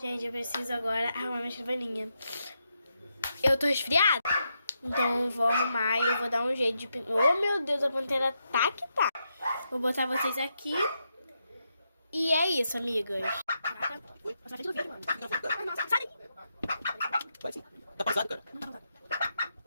eu preciso agora arrumar minha escrivaninha. Eu tô resfriada. Então eu vou arrumar e eu vou dar um jeito de... Oh, meu Deus, a pantera tá que tá. Vou botar vocês aqui. E é isso, amigas. Oi, passa na frente do vídeo, mano. Nossa, sai daí. Vai sim. Tá pausado, cara? Não tá.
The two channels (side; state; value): both; inverted; correlation -0.83